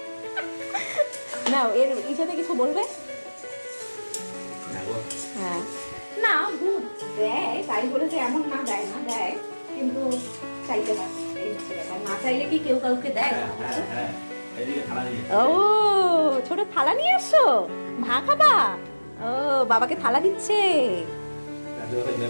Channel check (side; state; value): both; inverted; correlation -1.00